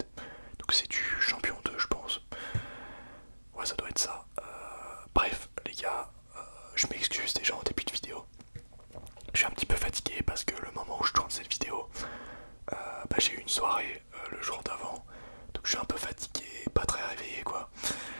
Donc c'est du champion 2 je pense. Ouais ça doit être ça. Bref les gars, je m'excuse déjà en début de vidéo. Je suis un petit peu fatigué parce que le moment où je tourne cette vidéo, j'ai eu une soirée le jour d'avant. Donc je suis un peu fatigué, pas très réveillé quoi.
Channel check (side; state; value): both; inverted; correlation -1.00